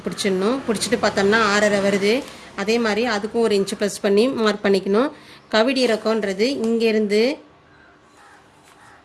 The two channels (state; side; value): identical; both; correlation 1.00